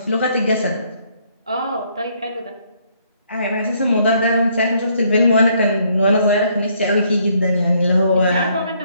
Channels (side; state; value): both; inverted; correlation -0.68